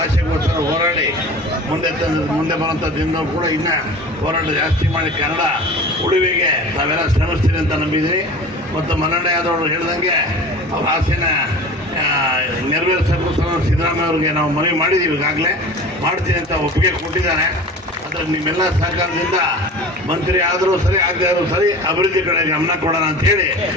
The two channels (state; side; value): normal; both; correlation 0.38